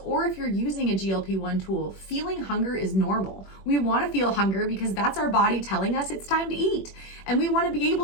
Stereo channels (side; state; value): right; late; 21 ms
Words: or if you're using a GLP-1 tool, feeling hunger is normal. We want to feel hunger because that's our body telling us it's time to eat. And we want to be